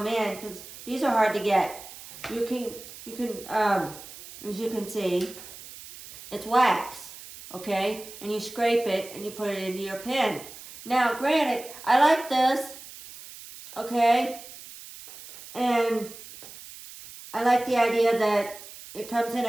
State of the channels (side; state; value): right; noise; hiss, 16 dB below the sound